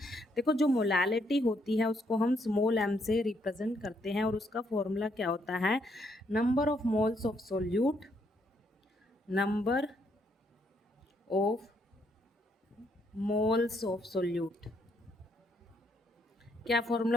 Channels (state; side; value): normal; both; correlation 0.73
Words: देखो जो मोलालिटी होती है उसको हम स्मॉल m से रिप्रेजेंट करते हैं, और उसका फॉर्मूला क्या होता है, number of moles of solute, number of moles of solute. क्या